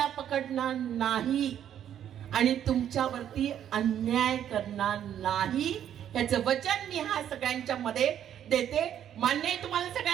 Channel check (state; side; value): quieter; left; 10.1 dB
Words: पकडणार नाही आणि तुमच्यावरती अन्याय करणार नाही. याचं वचन मी हा सगळ्यांच्या मध्ये देते. मान्य आहे तुम्हाला